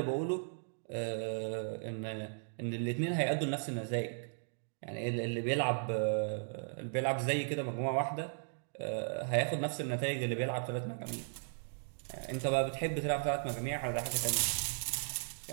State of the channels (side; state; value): left; silent; digital silence